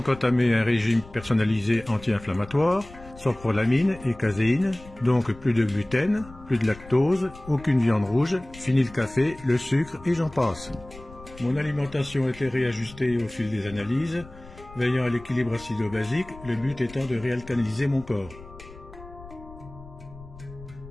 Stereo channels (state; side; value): noise; left; rumble, 19 dB below the sound